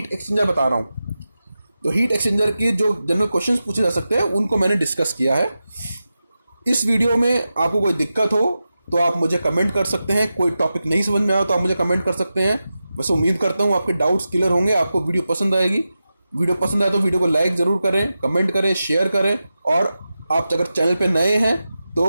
एक्सचेंजर बता रहा हूँ। तो हीट एक्सचेंजर के जो जनरल क्वेश्चंस पूछे जा सकते हैं उनको मैंने डिस्कस किया है। इस वीडियो में आपको कोई दिक्कत हो तो आप मुझे कमेंट कर सकते हैं, कोई टॉपिक नहीं समझ में आया तो आप मुझे कमेंट कर सकते हैं। बस उम्मीद करता हूँ आपके डाउट्स क्लियर होंगे, आपको वीडियो पसंद आएगी। वीडियो पसंद आए तो वीडियो को लाइक ज़रूर करें, कमेंट करें, शेयर करें, और आप अगर चैनल पर नए हैं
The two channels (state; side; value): inverted; both; correlation -0.92